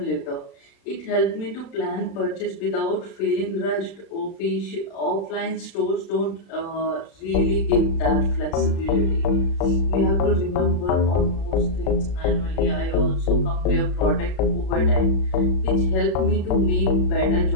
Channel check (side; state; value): right; late; 36 ms